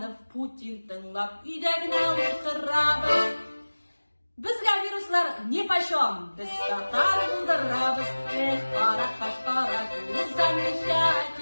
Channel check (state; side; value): inverted; both; correlation -1.00